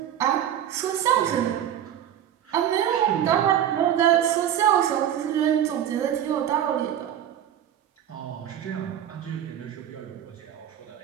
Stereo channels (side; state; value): left; quieter; 10.4 dB